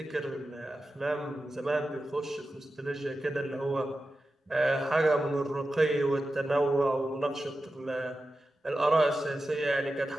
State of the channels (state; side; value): normal; both; correlation 0.92